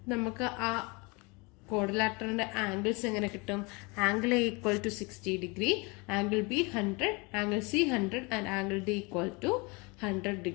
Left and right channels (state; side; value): quieter; right; 28.0 dB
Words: നമുക്ക് ആ ക്വാഡ്രിലാറ്ററലിന്റെ ആംഗിൾസ് എങ്ങനെ കിട്ടും? Angle A equal to 60 degree, angle B 100, angle C 100 and angle D equal to 100